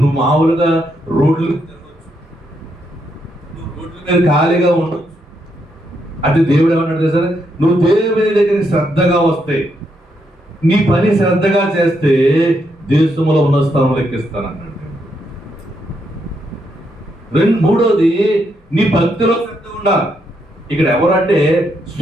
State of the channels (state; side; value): normal; both; correlation 0.78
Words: నువ్వు మామూలుగా రోడ్లు తిరగచ్చు, నువ్వు రోడ్ల మీద ఖాళీగా ఉండొచ్చు. అది దేవుడు ఏమన్నాడు తెలుసా? నువ్వు దేవుని దగ్గరికి శ్రద్ధగా వస్తే, నీ పని శ్రద్ధగా చేస్తే దేశంలో ఉన్న స్థలంలో ఎక్కిస్తానన్నాడు. మూడోది నీ భక్తిలో శ్రద్ధ ఉండాలి. ఇక్కడ ఎవరంటే